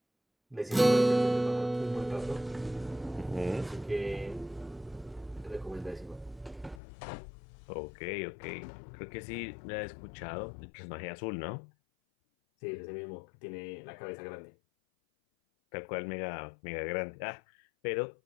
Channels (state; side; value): drops out; right; at 6.8 s